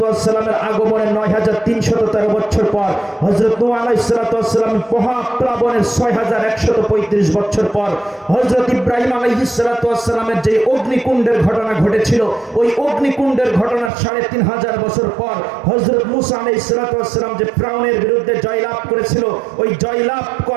ওয়াস সালামের আগমনের ৯৩১৩ বছর পর, হযরত নূহ আলাইহিস সালাতু ওয়াস সালামের মহাপ্লাবনের ৬১৩৫ বছর পর, হযরত ইব্রাহিম আলাইহিস সালাতু ওয়াস সালামের যে অগ্নিকুণ্ডের ঘটনা ঘটেছিল, ওই অগ্নিকুণ্ডের ঘটনার ৩৫০০ বছর পর, হযরত মূসা আলাইহিস সালাতু ওয়াস সালাম যে ফিরআউনের বিরুদ্ধে জয়লাভ করেছিল, ওই জয়লাভ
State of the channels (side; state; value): left; drops out; at 13.9 s